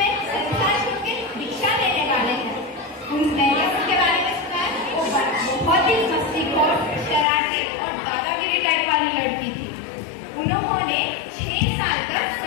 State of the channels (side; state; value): right; drops out; at 7.2 s